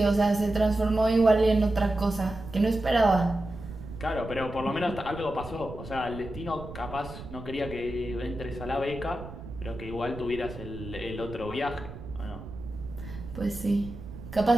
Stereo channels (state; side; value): noise; right; rumble, 12 dB below the sound